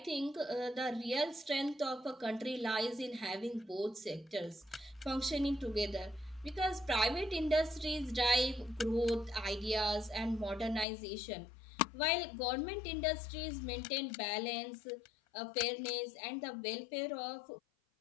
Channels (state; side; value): drops out; right; at 10.9 s